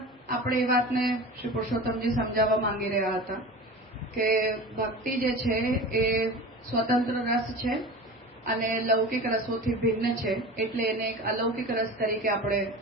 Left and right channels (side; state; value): both; normal; correlation 0.33